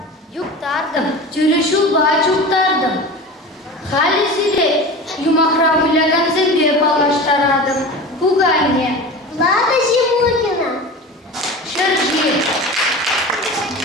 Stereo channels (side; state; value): both; normal; correlation 0.32